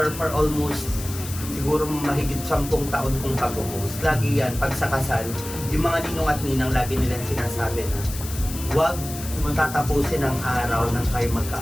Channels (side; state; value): left; noise; hiss, 11 dB below the sound